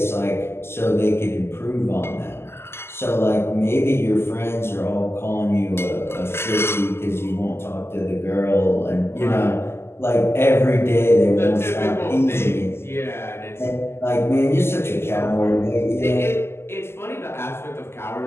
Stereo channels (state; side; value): late; right; 0.12 ms